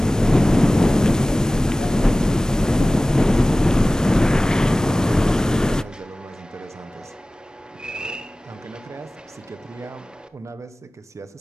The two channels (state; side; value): normal; both; correlation 0.98